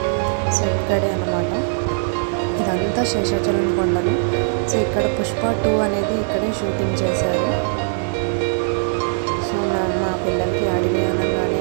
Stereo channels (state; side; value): silent; left; 58 dB below the other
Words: సో ఇక్కడే అన్నమాట. ఇదంతా శేషాచలం కొండలు. సో ఇక్కడ పుష్ప 2 అనేది ఇక్కడే షూటింగ్ చేశారు. సో మా పిల్లలకి అడవి అనగానే